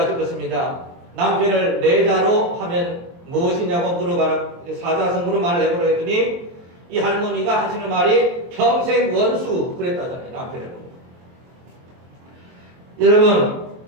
것입니다. 남편을 내자로 하면 무엇이냐고 물어봐라, 사자성어로 말을 해보라 했더니 이 할머니가 하시는 말이 평생 원수 그랬다잖아요. 남편을. 여러분,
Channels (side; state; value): left; late; 23 ms